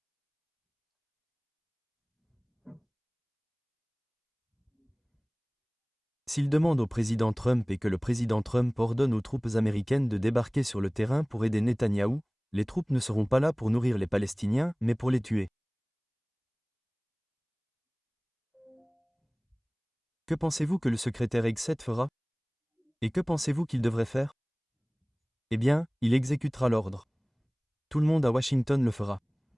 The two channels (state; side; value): identical; both; correlation 1.00